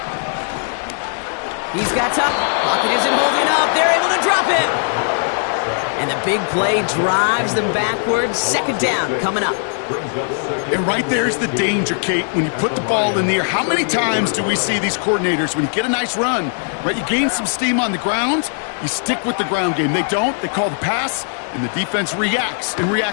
He's got top. Pocket isn't holding up. They're able to drop him. And the big play drives them backwards. Second down coming up. And right there's the danger, Kate. When you put the ball in the air, how many times do we see these coordinators, when you get a nice run, right, you gain some steam on the ground, you stick with the ground game. They don't. They call the pass, and the defense reacts, and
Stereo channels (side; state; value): right; silent; 67 dB below the other